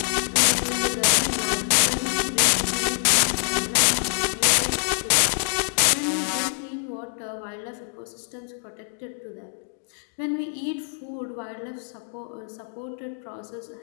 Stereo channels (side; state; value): right; silent; digital silence